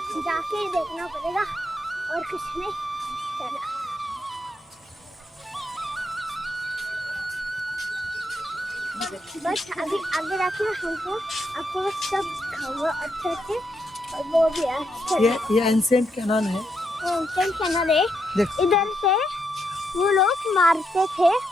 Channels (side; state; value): both; normal; correlation 0.80